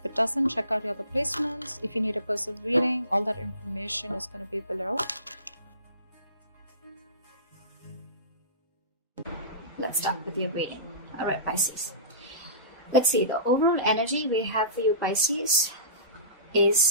it doesn't, check out your other placements. If you need a personal reading, all that information is going to be below. Let's start with your reading. All right, Pisces. Let's see. The overall energy we have for you, Pisces,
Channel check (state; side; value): inverted; both; correlation -0.35